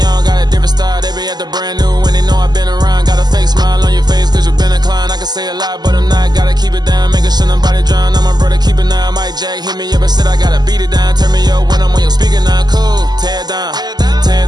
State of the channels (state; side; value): late; left; 0.20 ms